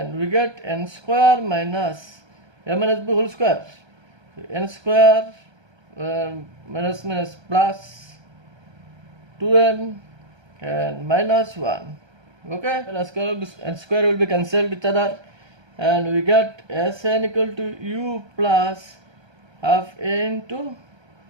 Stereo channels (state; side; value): late; left; 1.3 ms